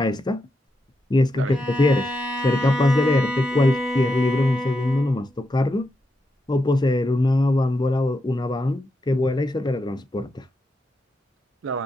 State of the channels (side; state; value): both; normal; correlation 0.85